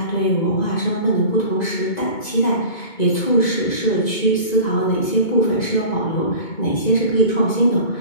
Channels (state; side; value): late; right; 2.2 ms